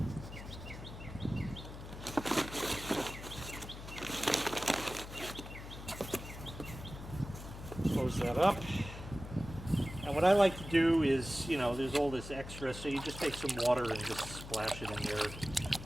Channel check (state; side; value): noise; left; hum, 11 dB below the sound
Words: Close that up. And what I like to do is, you know, there's all this extra, so you just take some water and just splash it in there,